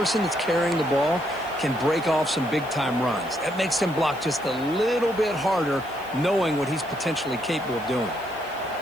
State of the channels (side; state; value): left; noise; hiss, 23 dB below the sound